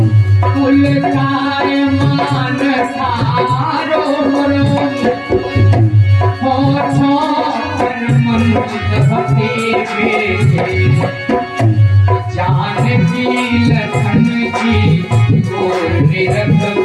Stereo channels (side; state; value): both; identical; correlation 1.00